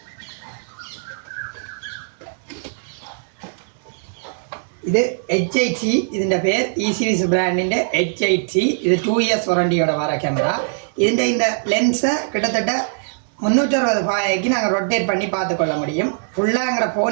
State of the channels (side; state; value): left; silent; 65 dB below the other